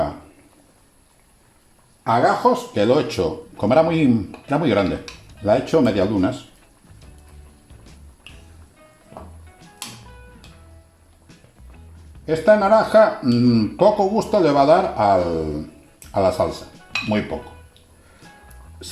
A gajos, que lo he hecho, como era muy grande, la he hecho medialunas. Esta naranja poco gusto le va a dar a la salsa, muy poco.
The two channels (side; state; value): both; identical; correlation 1.00